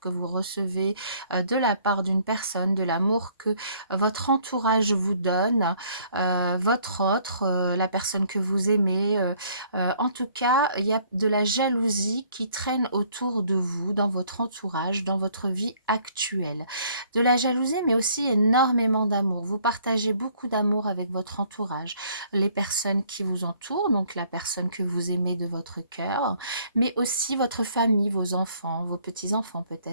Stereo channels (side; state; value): both; inverted; correlation -0.62